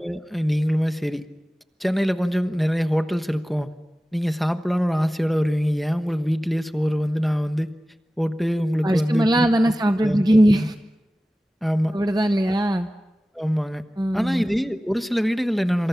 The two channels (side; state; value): both; normal; correlation 0.96